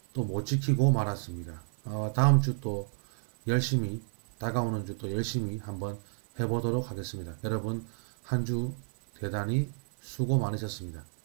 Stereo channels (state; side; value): silent; left; 57 dB below the other